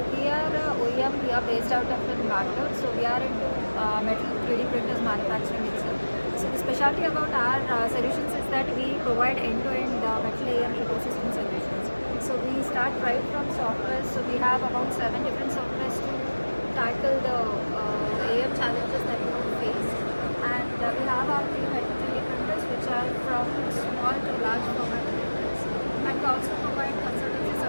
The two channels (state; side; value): inverted; both; correlation -1.00